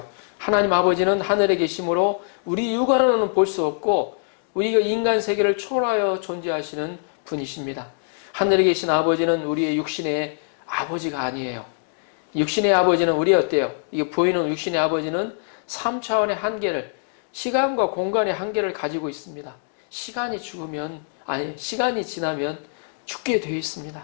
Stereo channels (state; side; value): silent; right; digital silence